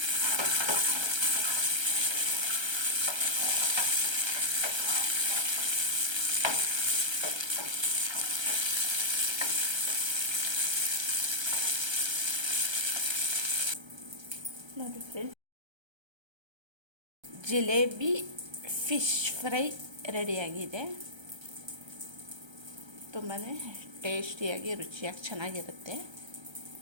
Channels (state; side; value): late; left; 1.3 ms